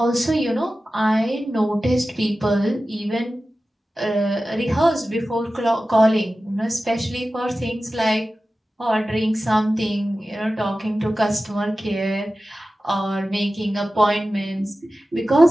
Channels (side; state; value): both; normal; correlation 0.95